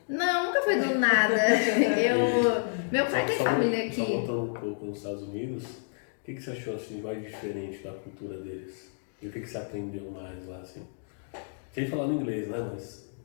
Não, nunca foi do nada. Meu pai tem família aqui. Só voltando um pouco nos Estados Unidos, o que você achou assim, mais diferente da cultura deles? E o que você aprendeu mais lá, assim? Sem falar no inglês, né, mas...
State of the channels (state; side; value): silent; right; digital silence